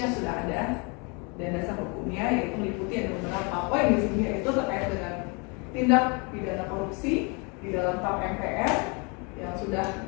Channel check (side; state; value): right; quieter; 31.7 dB